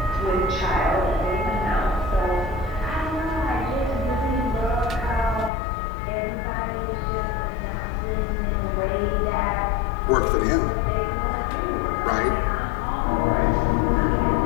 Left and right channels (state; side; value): drops out; right; at 5.5 s